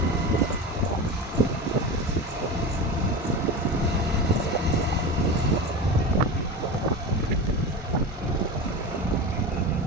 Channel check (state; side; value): normal; both; correlation 0.26